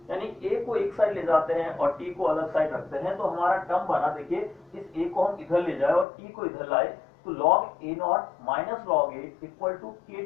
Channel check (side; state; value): right; drops out; at 6.1 s